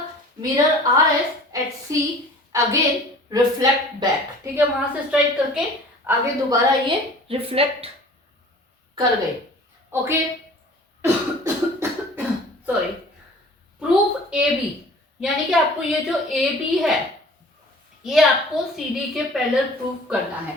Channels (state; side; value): normal; both; correlation 0.46